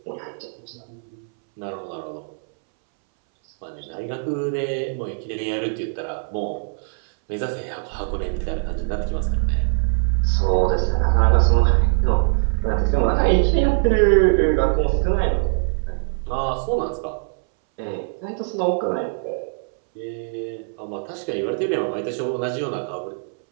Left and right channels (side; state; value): left; silent; 64 dB below the other